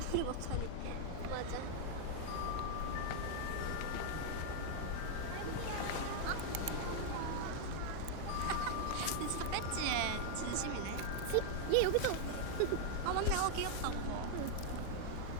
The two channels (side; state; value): both; different; correlation 0.00